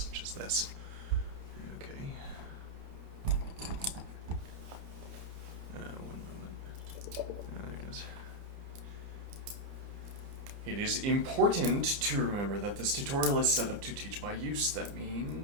as this. Okay. One moment. There it is. It is important to remember that this tutorial is set up to teach by use. That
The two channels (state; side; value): late; left; 30 ms